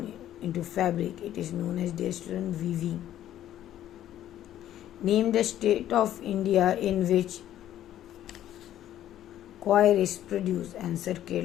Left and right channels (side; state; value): right; quieter; 12.1 dB